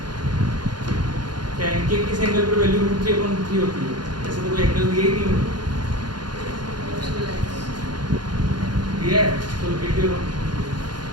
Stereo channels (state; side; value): late; left; 0.71 ms